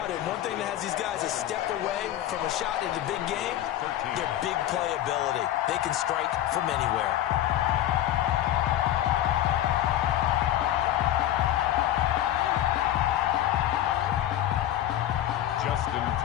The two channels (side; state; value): right; quieter; 12.6 dB